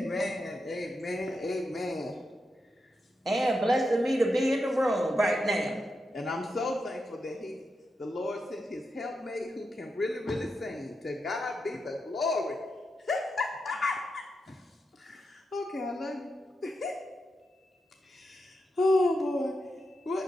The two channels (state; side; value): normal; both; correlation 0.87